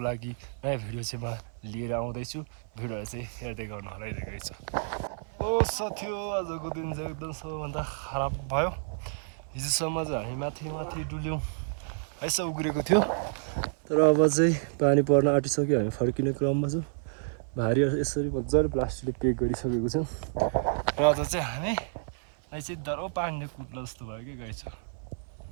नयाँ भिडियो चाहिँ म लिएर आउँदैछु। भिडियो चाहिँ हेर्दै गर्नु होला है। ओ साथीहो, आजको दिन चाहिँ एकदम सबैभन्दा खराब भयो। हिजोसम्म चाहिँ हामी माथि डुल्यौँ, यसो उग्रेको थियो। तर अब चाहिँ पानी पर्न आँटिसक्यो, हामी फर्किने क्रममा छौँ। भारी यसरी मजाले प्लास्टिकले पेक गरिसकेको छौँ। र आज चाहिँ हामी चाहिँ दरो पानीले कुट्ला जस्तो भयो क्या गाई छ।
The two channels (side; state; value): left; silent; 56 dB below the other